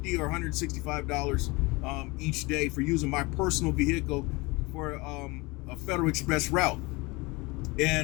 or $165 each day for using my personal vehicle for a Federal Express route.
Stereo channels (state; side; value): quieter; right; 24.7 dB